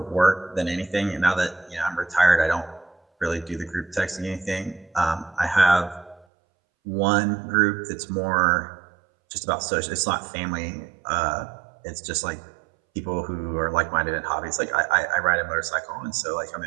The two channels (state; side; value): drops out; left; at 6.2 s